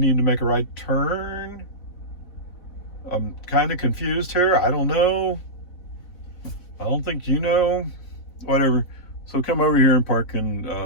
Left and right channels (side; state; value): right; late; 4.2 ms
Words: to make a right turn. I'm kind of confused here. I don't know. I don't think you know. Whatever. So come over here and park in